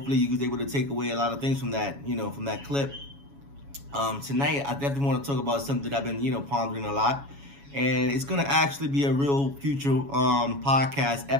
you was able to take away a lot of things from that, from that clip. Tonight, I definitely want to talk about something that I've been, pondering a lot. And it's going to actually be a real future podcast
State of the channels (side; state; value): left; late; 7.2 ms